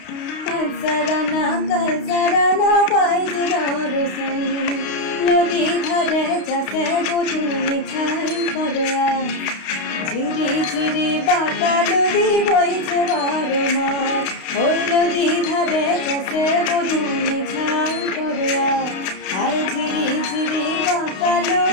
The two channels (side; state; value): right; late; 32 ms